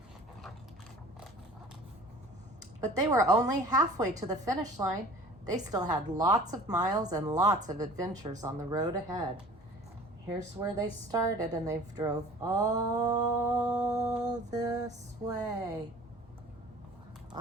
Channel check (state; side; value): normal; both; correlation 0.46